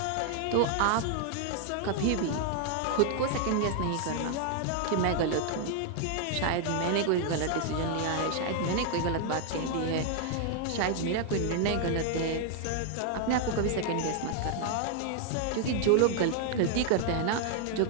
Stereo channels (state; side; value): different; both; correlation 0.00